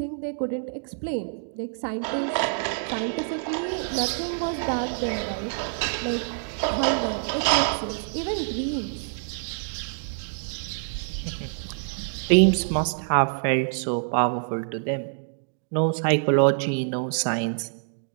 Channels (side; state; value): left; silent; digital silence